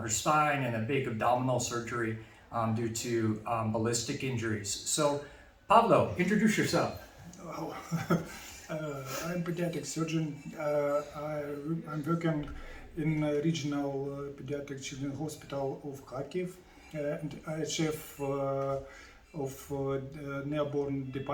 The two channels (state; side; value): identical; both; correlation 1.00